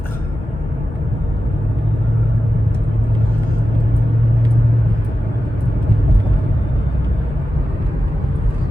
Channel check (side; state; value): both; normal; correlation 0.92